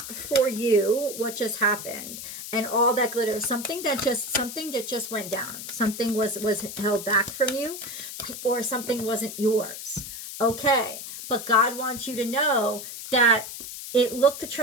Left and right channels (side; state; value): left; noise; hiss, 9 dB below the sound